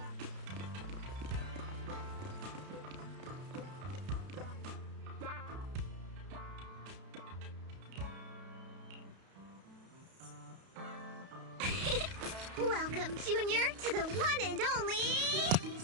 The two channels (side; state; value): left; late; 32 ms